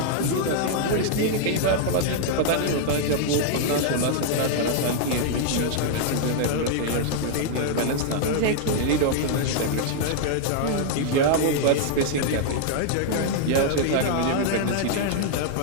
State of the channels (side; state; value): both; different; correlation -0.01